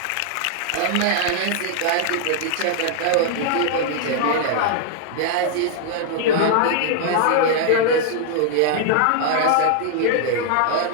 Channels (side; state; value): both; different; correlation 0.00